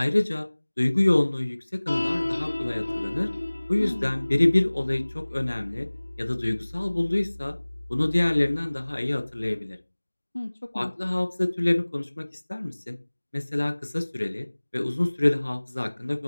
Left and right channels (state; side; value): inverted; both; correlation -1.00